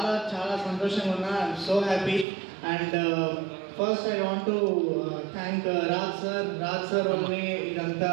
చాలా సంతోషంగా ఉన్నా. I'm so happy. And first I want to thank Raj sir వల్లనే ఇదంతా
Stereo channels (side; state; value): left; drops out; at 2.2 s